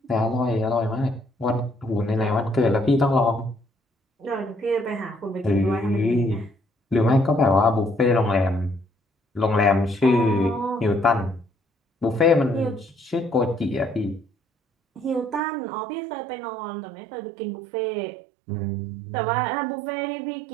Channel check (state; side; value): drops out; left; at 15.4 s